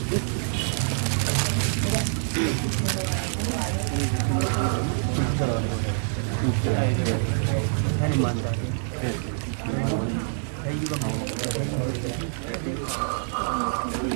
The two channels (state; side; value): silent; left; 61 dB below the other